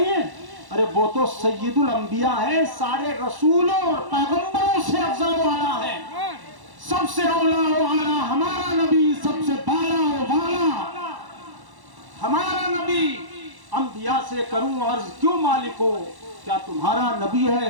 ہے؟ ارے وہ تو سید الانبیاء ہے، سارے رسولوں اور پیغمبروں سے افضل والا ہے، سب سے اولا و اعلیٰ ہمارا نبی، سب سے بالا و والا ہمارا نبی۔ انبیاء سے کروں عرض کیوں مالک ہو، کیا تمہارا نبی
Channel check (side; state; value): left; late; 1.1 ms